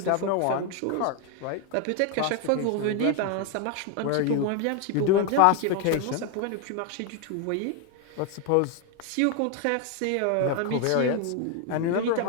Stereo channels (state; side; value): different; both; correlation 0.01